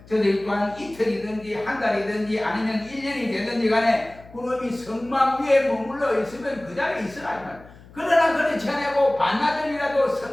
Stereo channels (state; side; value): noise; left; hum, 22 dB below the sound